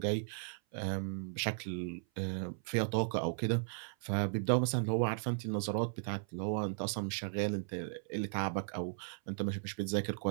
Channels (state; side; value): silent; left; 54 dB below the other